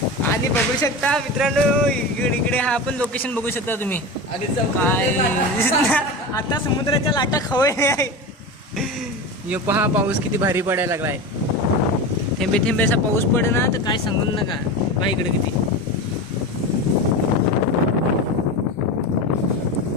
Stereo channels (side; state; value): both; normal; correlation 0.25